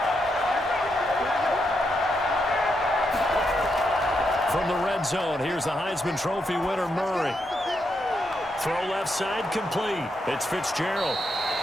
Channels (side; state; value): both; normal; correlation 0.82